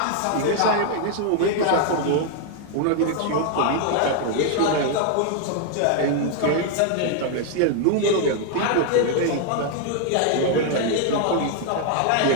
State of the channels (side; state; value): both; different; correlation 0.00